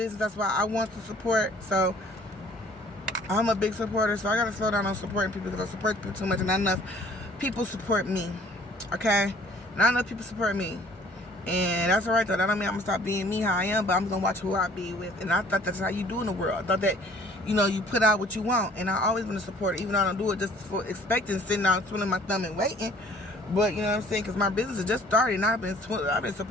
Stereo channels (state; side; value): normal; both; correlation 0.54